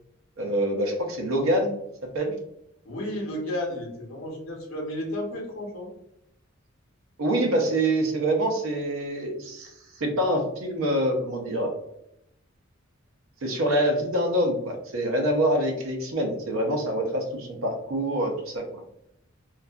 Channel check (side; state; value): both; normal; correlation 0.18